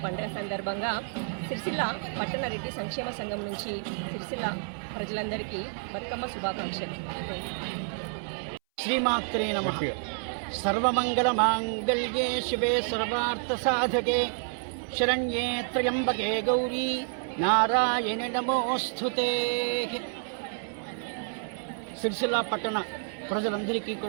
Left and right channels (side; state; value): left; silent; 58 dB below the other